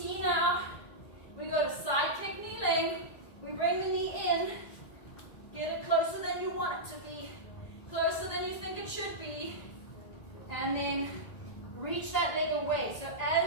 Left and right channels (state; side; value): late; right; 1.7 ms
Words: now, we go to side kick kneeling. We bring the knee in. Get it closer than you want it to be. Closer than you think it should be. And then reach that leg away. So